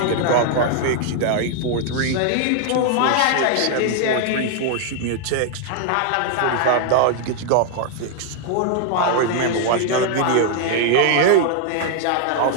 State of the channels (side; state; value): both; different; correlation 0.00